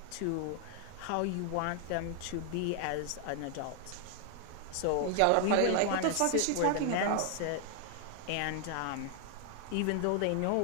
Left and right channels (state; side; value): different; both; correlation 0.00